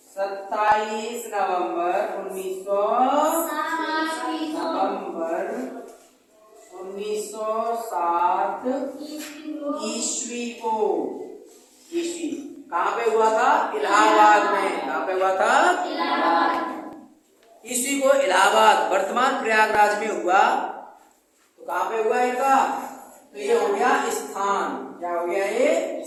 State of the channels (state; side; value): identical; both; correlation 1.00